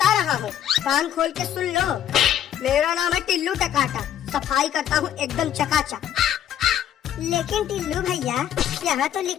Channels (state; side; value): quieter; right; 10.4 dB